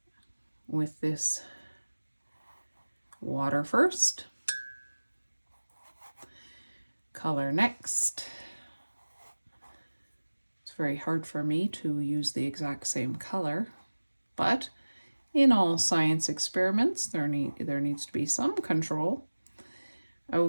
with this water first. Color next. Very hard for me to use the exact same color, but in all science experiments there needs to be some control.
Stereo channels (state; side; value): inverted; both; correlation -1.00